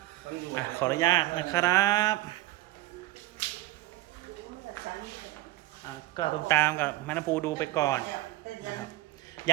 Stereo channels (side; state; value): left; quieter; 16.9 dB